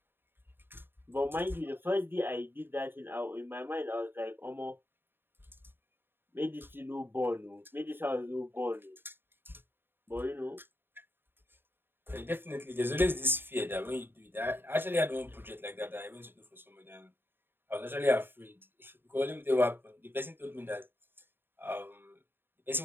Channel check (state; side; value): late; left; 0.10 ms